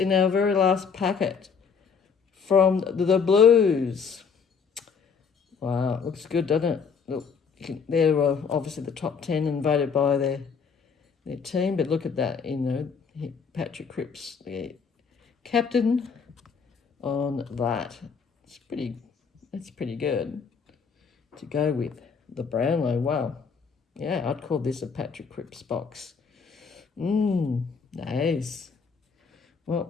our very last packet from the Blues. Wow, looks good, doesn't it? Look, they're obviously the top 10 and voted by their team, but look at that, Patrick Cripps, the captain on that. It's pretty good to go with the Brownlow. Wow. Yeah, I'd call this a Patrick Cripps box. Nice. Well,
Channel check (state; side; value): quieter; right; 5.9 dB